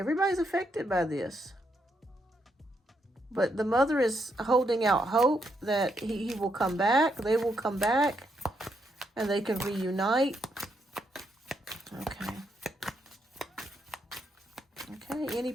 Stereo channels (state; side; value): normal; both; correlation 0.78